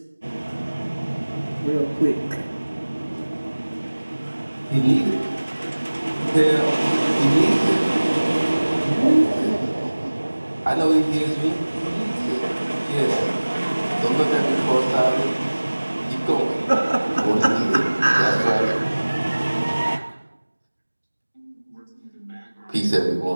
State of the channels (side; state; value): both; inverted; correlation -1.00